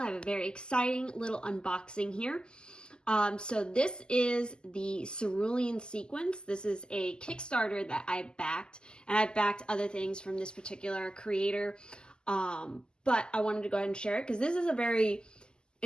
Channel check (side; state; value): right; late; 0.046 ms